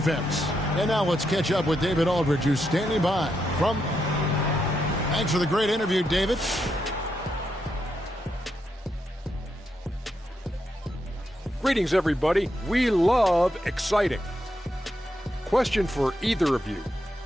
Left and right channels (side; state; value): both; normal; correlation 0.82